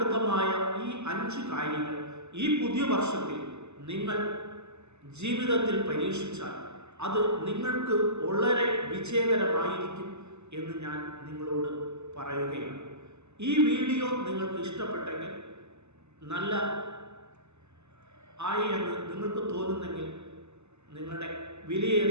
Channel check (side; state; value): left; late; 0.81 ms